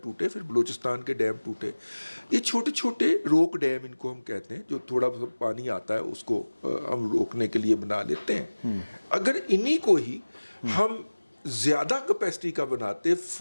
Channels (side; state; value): both; inverted; correlation -1.00